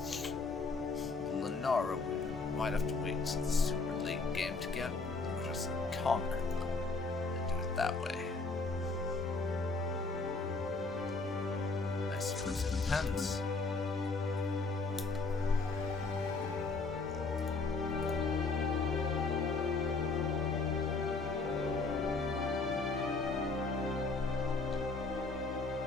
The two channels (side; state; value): right; quieter; 3.8 dB